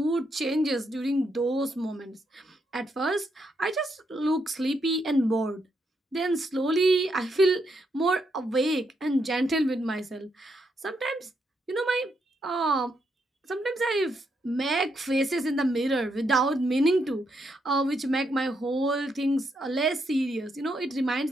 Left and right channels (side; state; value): both; normal; correlation 0.79